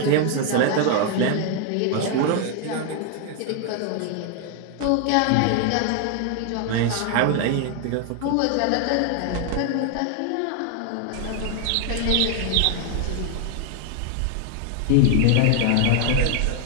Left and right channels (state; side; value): different; both; correlation 0.01